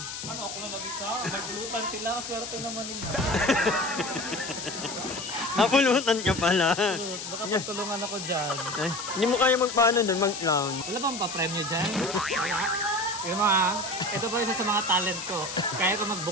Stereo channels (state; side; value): noise; left; hiss, 8 dB below the sound